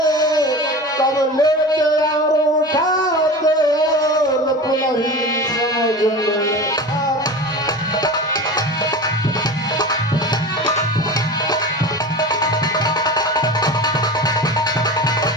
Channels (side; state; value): both; normal; correlation 0.31